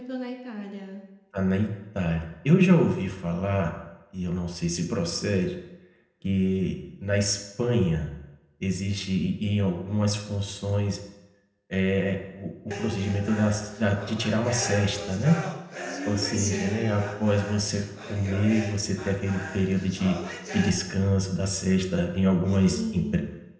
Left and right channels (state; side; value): identical; both; correlation 1.00